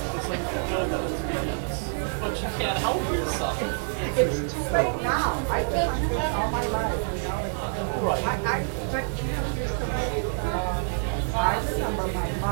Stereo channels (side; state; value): left; silent; 60 dB below the other